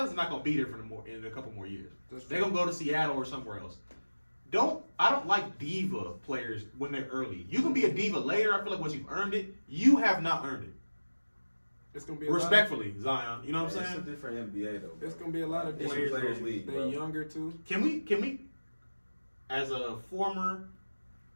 are not going to be there in a couple more years. That's They're going to go to Seattle or somewhere else. I don't like diva players when they're early. You can be a diva later. I feel like once you've earned it, you have not earned it. It's gonna be Respectfully, Zion. You know what I'm it's a saying? different NBA though. It's gonna be a lot of It's a players. players league, They bro. younger too. Can we, as a former,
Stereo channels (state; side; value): inverted; both; correlation -1.00